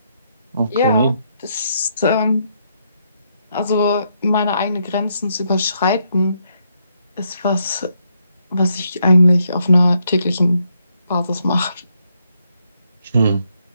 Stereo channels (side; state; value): both; inverted; correlation -0.76